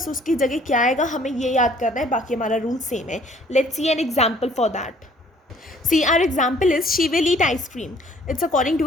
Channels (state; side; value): normal; both; correlation 0.58